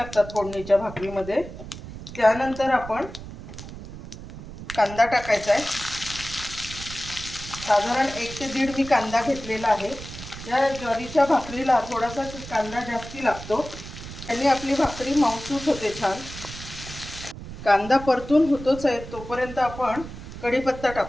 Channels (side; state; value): right; noise; rumble, 12 dB below the sound